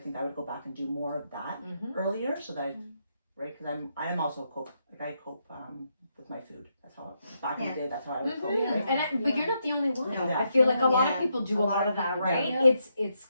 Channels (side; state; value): both; inverted; correlation -0.80